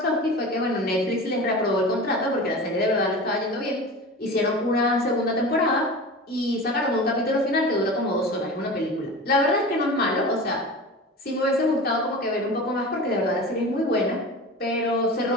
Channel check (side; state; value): both; normal; correlation 0.32